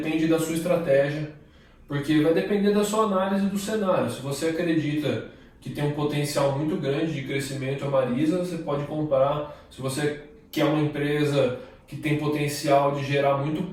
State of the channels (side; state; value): both; identical; correlation 1.00